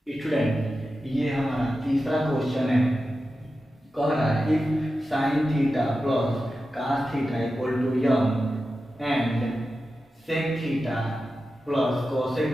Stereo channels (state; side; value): normal; both; correlation 0.92